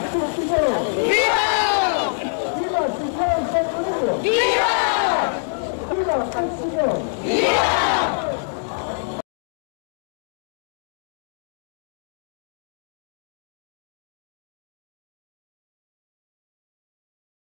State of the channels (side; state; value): right; silent; digital silence